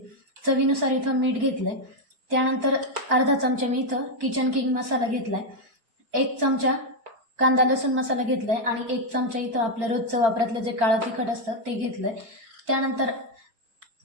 चवीनुसार इथं मीठ घेतलंय. त्यानंतर अर्धा चमचा मी इथं किचन किंग मसाला घेतलाय. 1 चमचा कांदा लसूण मसाला घेतलाय आणि 1 चमचा इथं आपलं रोजचं वापरातलं जे काळं तिखट असतं ते घेतलंय. त्यानंतर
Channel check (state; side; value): late; left; 4.4 ms